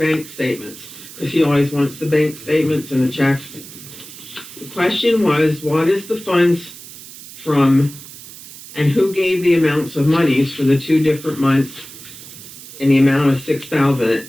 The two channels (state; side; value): noise; right; hiss, 16 dB below the sound